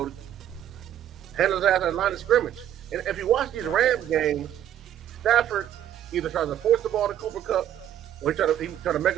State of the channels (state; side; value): quieter; left; 11.0 dB